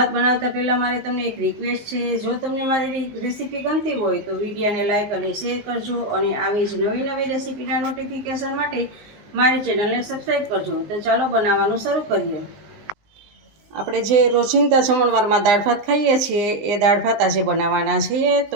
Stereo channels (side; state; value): left; late; 19 ms